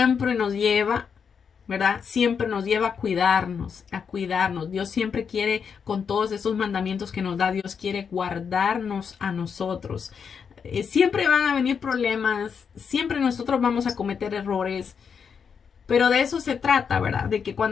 nos lleva, ¿verdad? Siempre nos lleva a cuidarnos, a cuidarnos. Dios siempre quiere, con todos esos mandamientos que nos da, Dios quiere guardarnos a nosotros. Siempre van a venir problemas, siempre nosotros vamos a cometer errores, pero de eso se trata, ¿verdad? De que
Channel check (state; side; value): quieter; right; 6.6 dB